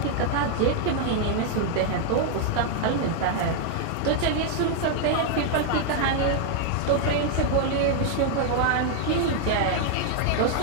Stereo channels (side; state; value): both; different; correlation 0.00